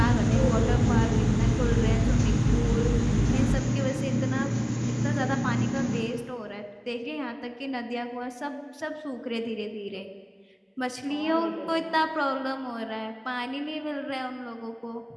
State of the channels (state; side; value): identical; both; correlation 1.00